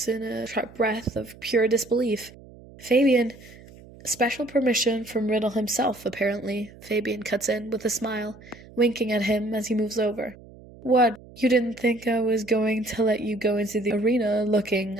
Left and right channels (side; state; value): right; noise; hum, 21 dB below the sound